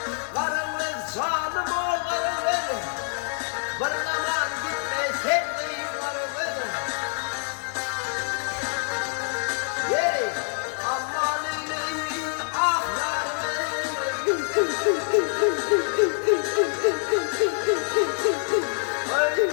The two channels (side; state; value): right; silent; 61 dB below the other